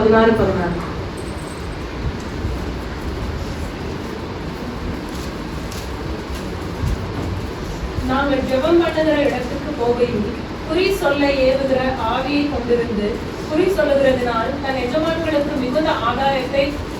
நாங்கள் ஜெபம் பண்ணுகிற இடத்துக்கு போகையில் குறி சொல்ல ஏவுகிற ஆவியை கொண்டிருந்து குறி சொல்லுகிறதுனால் தன் எஜமான்களுக்கு மிகுந்த ஆதாயத்தை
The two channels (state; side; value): identical; both; correlation 1.00